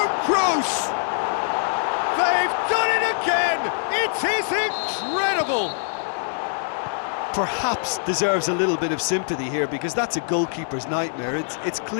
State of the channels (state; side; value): silent; right; digital silence